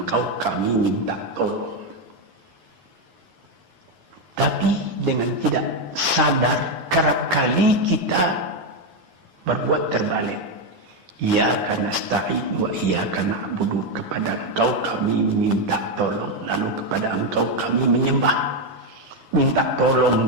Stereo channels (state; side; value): late; left; 10 ms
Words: kami minta tolong. Tapi dengan tidak sadar, kerap kali kita berbuat terbalik. Iyyaka nasta'in wa iyyaka na'budu, kepada Engkau kami minta tolong, lalu kepada Engkau kami menyembah. Minta tolong